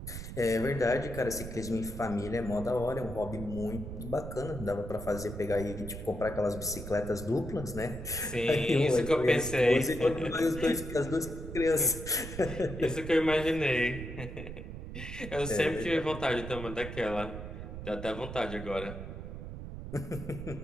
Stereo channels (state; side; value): noise; right; rumble, 9 dB below the sound